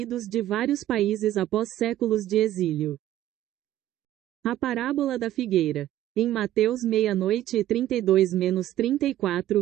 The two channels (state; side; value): quieter; left; 13.4 dB